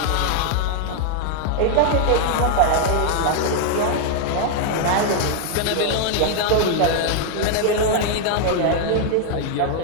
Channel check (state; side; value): different; both; correlation 0.00